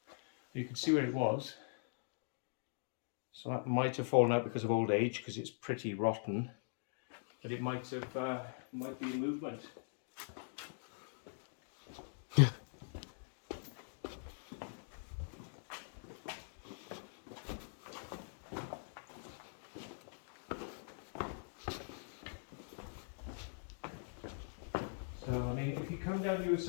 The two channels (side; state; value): right; silent; digital silence